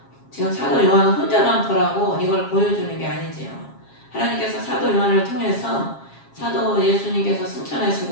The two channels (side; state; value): right; late; 7.4 ms